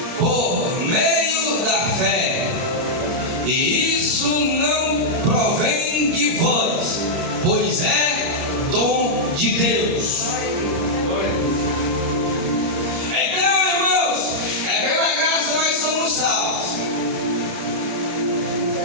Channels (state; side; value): late; left; 29 ms